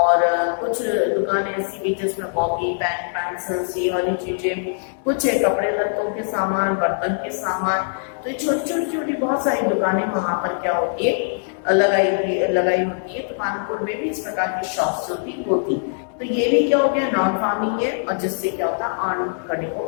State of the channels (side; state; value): right; silent; 63 dB below the other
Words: कुछ दुकानें ऐसी भी जिसमें कॉपी, पेन, पेंसिल्स, ये वाली चीजें, कुछ है कपड़े लत्तों के सामान, बर्तन के सामान। तो ये छोटी बहुत सारी दुकानें वहां पर क्या होती है लगाई होती है। तो पालनपुर में भी इस प्रकार की शॉप्स होती। तो ये भी क्या हो गया, नॉन फार्मिंग है, और जिससे क्या होता है अर्न करने